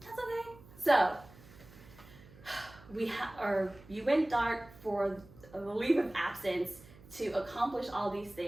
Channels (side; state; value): right; noise; hum, 21 dB below the sound